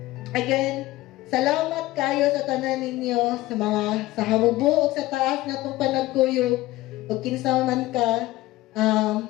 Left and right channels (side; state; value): right; quieter; 17.6 dB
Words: again, salamat kayo sa tanan ninyo, sa mga, sa hamubo, o sa taas na itong panagkuyog, o kinsa man ka.